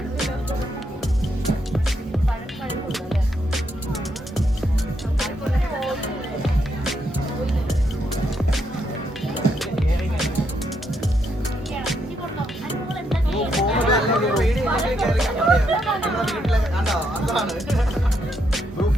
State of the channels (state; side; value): normal; both; correlation 0.77